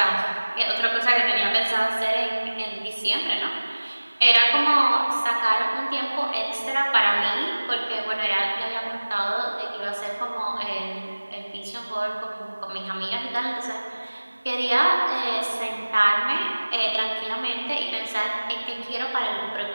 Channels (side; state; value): both; inverted; correlation -1.00